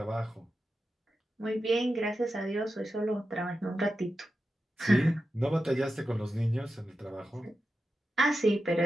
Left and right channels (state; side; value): normal; both; correlation 0.91